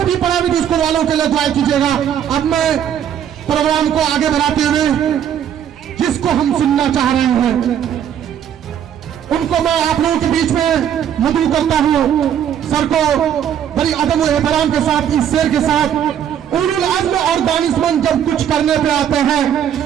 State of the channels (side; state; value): left; quieter; 9.4 dB